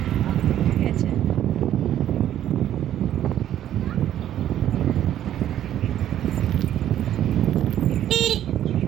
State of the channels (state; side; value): quieter; left; 11.4 dB